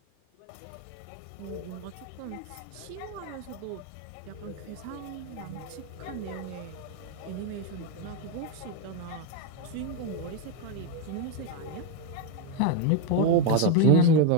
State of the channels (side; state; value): both; different; correlation 0.02